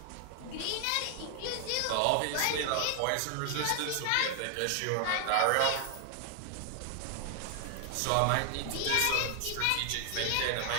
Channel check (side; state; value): both; different; correlation 0.00